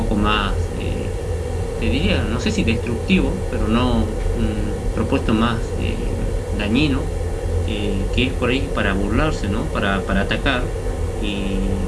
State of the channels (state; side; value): identical; both; correlation 1.00